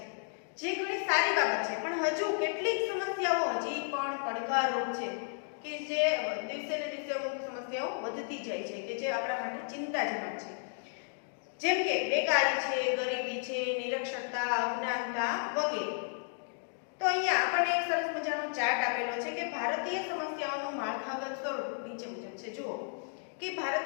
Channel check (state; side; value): silent; right; 56 dB below the other